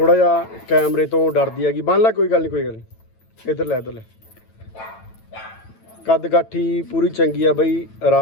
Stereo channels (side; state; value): right; late; 9.0 ms